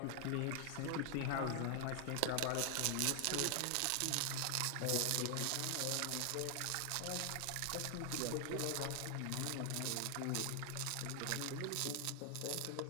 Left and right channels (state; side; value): different; both; correlation 0.00